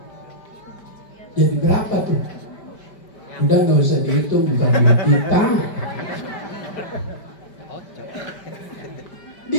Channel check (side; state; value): right; late; 5.1 ms